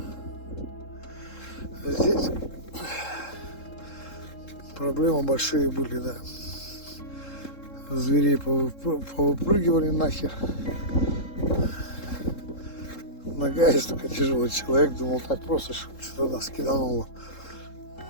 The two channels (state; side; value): late; right; 3.7 ms